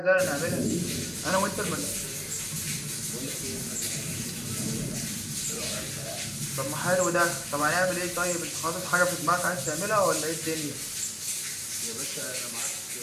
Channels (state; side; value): identical; both; correlation 1.00